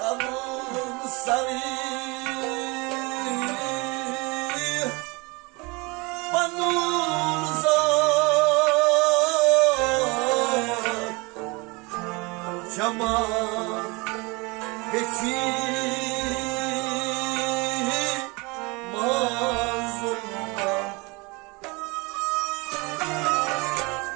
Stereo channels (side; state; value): left; quieter; 26.9 dB